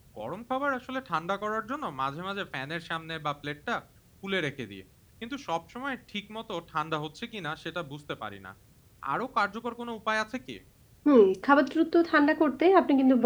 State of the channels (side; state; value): both; identical; correlation 1.00